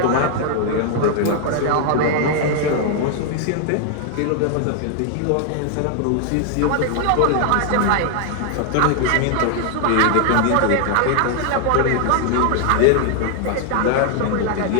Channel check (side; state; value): both; different; correlation 0.00